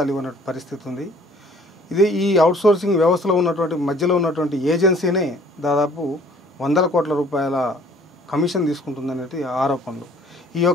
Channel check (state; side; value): normal; both; correlation 0.55